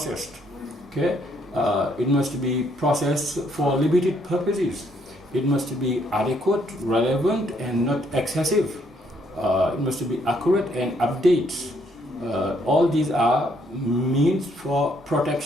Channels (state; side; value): normal; both; correlation 0.70